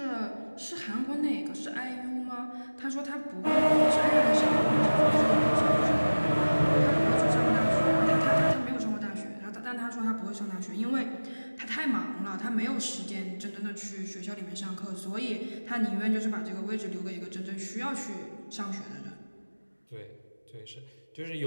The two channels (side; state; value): both; inverted; correlation -1.00